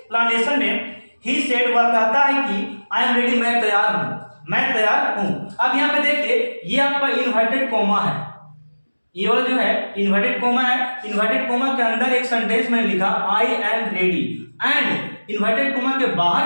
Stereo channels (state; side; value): inverted; both; correlation -1.00